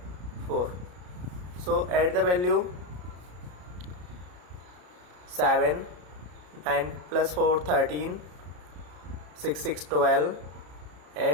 4. So add the value. 7 9 plus 4 13, 6 6 12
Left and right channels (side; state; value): left; late; 33 ms